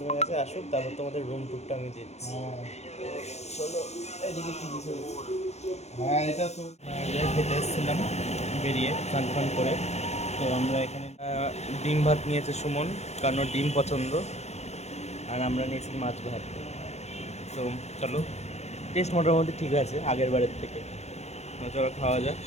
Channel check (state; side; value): late; right; 0.32 ms